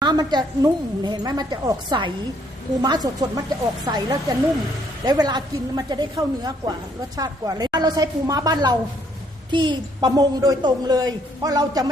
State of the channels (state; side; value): normal; both; correlation 0.67